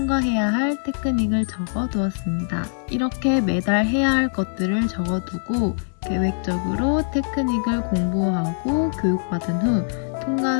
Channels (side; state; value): right; silent; 64 dB below the other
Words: 할 테크닉을 적어두었습니다. 이렇게 매달 해야 할 것들을 적어두고 계획적으로 테크닉을 공부하고 교육받은 후